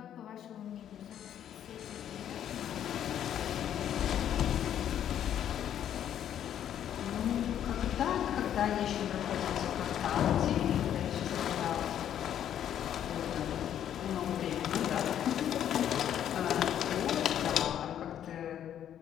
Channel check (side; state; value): right; quieter; 10.2 dB